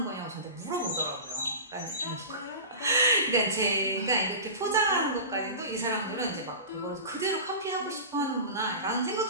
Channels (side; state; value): both; inverted; correlation -0.31